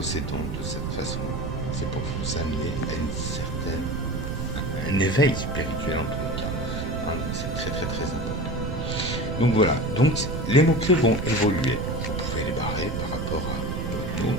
de cette façon-là. C'est pour vous amener à un éveil spirituel en tous les cas. Hein, c'est très très très important. Donc voilà, donc les mots-clés vont évoluer. Vous pouvez les barrer par rapport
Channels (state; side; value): noise; right; rumble, 4 dB below the sound